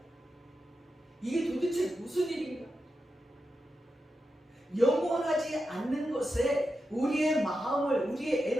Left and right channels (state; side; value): normal; both; correlation 0.89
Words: 이게 도대체 무슨 일인가? 영원하지 않는 것에 우리의 마음을 우리의